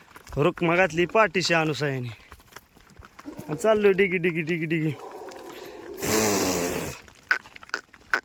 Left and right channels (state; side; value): identical; both; correlation 1.00